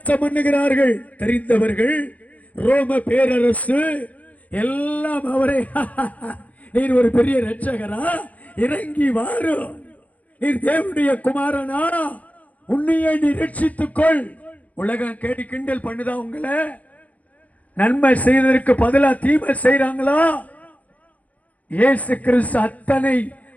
பண்ணுகிறார்கள். தெரிந்தவர்கள், ரோம பேரரசு எல்லாம் அவரை நீர் ஒரு பெரிய இரட்சகரா, இறங்கி வாரும், நீர் தேவனுடைய குமாரனா, உன்னையே நீ ரட்சித்துக்கொள். உலகம் கேடி கிண்டல் பண்ணுதா உங்களை? நன்மை செய்ததற்கு பதிலா தீமை செய்றாங்களா? இயேசு கிறிஸ்து அத்தனை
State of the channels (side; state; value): right; late; 0.072 ms